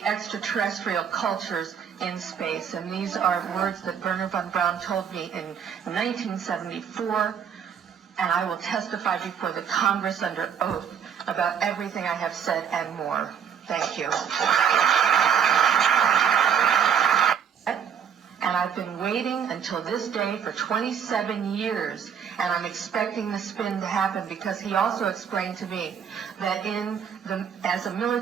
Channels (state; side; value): quieter; left; 7.8 dB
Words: extraterrestrial cultures in space. And these are words that Wernher von Braun told me in 1974, and I will testify before the Congress under oath about everything I have said and more. Thank you. And I've been waiting until this day for 27 years, and I'm expecting the spin to happen, because he also explained to me that as a